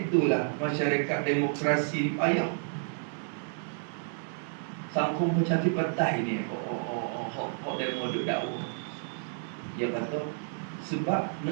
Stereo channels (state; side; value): silent; left; 57 dB below the other